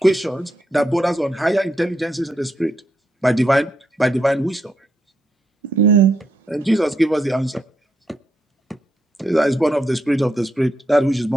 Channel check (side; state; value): both; normal; correlation 0.80